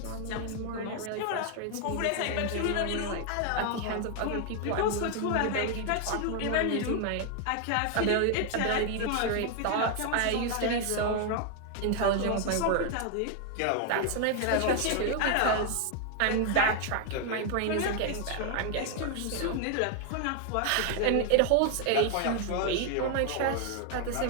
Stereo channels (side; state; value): both; different; correlation 0.00